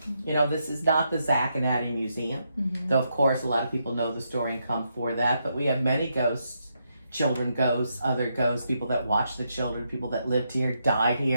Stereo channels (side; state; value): both; inverted; correlation -0.80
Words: You know, this is not the Zach and Addie Museum. Though, of course, a lot of people know the story and come for that. But we have many ghosts, children ghosts, other ghosts, people that watch the children, people that lived here, died